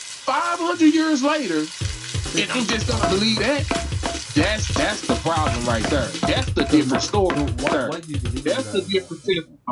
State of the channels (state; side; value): identical; both; correlation 1.00